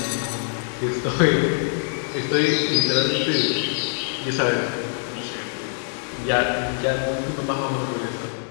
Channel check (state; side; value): silent; right; digital silence